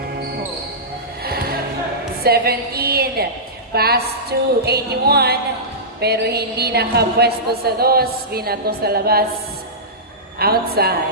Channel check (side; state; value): both; normal; correlation -0.16